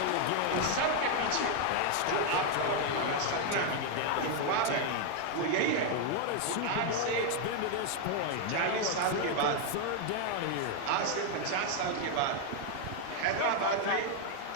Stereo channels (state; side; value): different; both; correlation 0.01